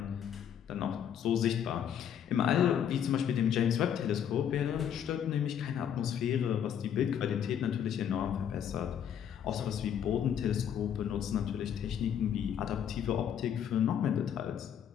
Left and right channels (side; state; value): right; quieter; 9.0 dB